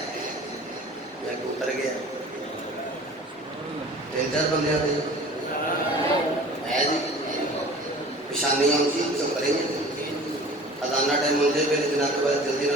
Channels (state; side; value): normal; both; correlation 0.43